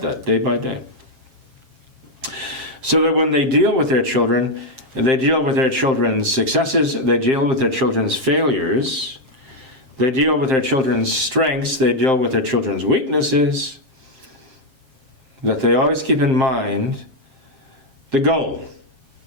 that, day by day. So that when they deal with their children, they deal with their children's successes, they deal with their children's failures, they deal with their children's strengths, they deal with their children's weaknesses, that they always keep in mind the goal,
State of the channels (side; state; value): left; late; 7.3 ms